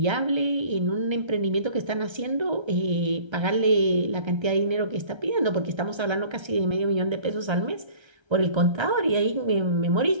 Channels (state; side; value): late; left; 1.3 ms